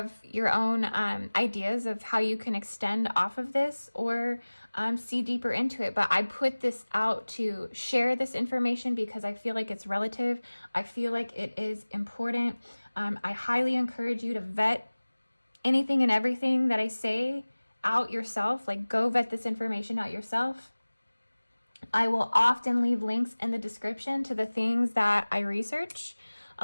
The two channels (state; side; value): inverted; both; correlation -1.00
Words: your own ideas of how you can extend off of this or see deeper into it. But I put this out to share this information because I feel like it's relative. I feel like it is important. I highly encourage you to vet anything and everything that I say out yourself. Like, go vet this information out yourself. I will often leave links in the description to the things that I research.